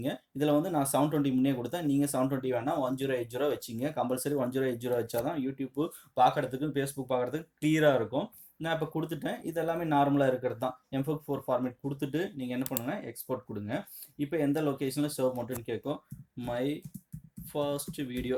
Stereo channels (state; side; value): identical; both; correlation 1.00